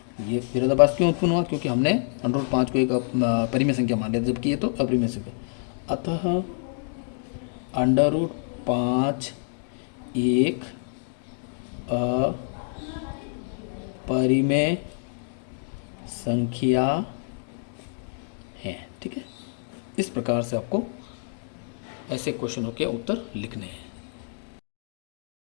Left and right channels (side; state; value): right; silent; 60 dB below the other